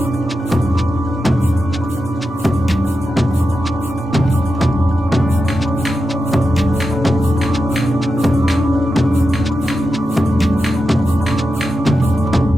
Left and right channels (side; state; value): both; normal; correlation 0.90